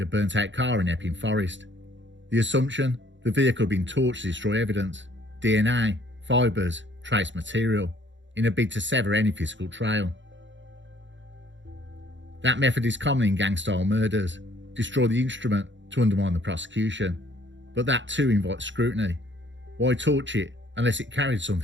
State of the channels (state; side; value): late; left; 0.54 ms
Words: a burnt-out car in Epping Forest. The assumption? The vehicle had been torched to destroy evidence, DNA, fibres, trace material, in a bid to sever any physical trail. That method is common in gang-style murders: destroy the instrument to undermine the prosecution. But that too invites scrutiny. Why torch it unless it carried